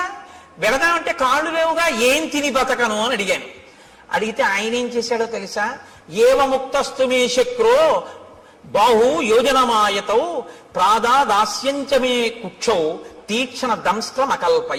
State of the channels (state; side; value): identical; both; correlation 1.00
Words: వెళదామంటే కాళ్ళు లేవుగా, ఏం తిని బతకను అని అడిగాను. అడిగితే ఆయన ఏం చేశాడో తెలుసా? ఏవముక్తస్తు మే శక్రో బాహు యోజనమాయతౌ ప్రాదాదాస్యంచమే కుక్షౌ తీక్షణ దంస్త్రం